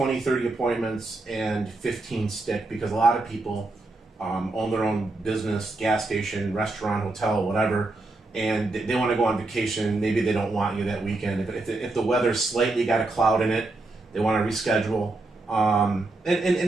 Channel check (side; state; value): left; quieter; 3.1 dB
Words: 30 appointments and 15 stick, because a lot of people own their own business, gas station, restaurant, hotel, whatever, and they want to go on vacation. Maybe they don't want you that weekend. If the weather's slightly got a cloud in it, they want to reschedule. And